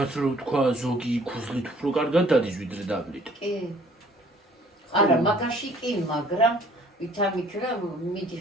რომ თქვა ზოგი ქუსლით უფრო კარგად დადის ვიდრე დაბლით. კი. არა, მაგაში კი, მაგრამ ვითამიქრა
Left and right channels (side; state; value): both; normal; correlation 0.57